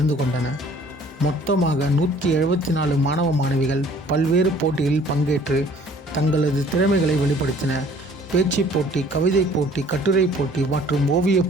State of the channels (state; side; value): normal; both; correlation 0.55